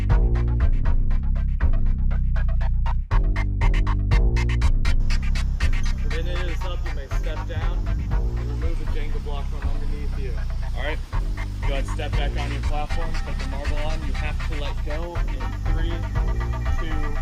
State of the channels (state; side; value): identical; both; correlation 1.00